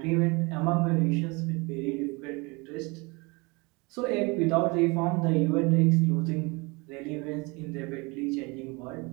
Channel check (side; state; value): left; quieter; 27.3 dB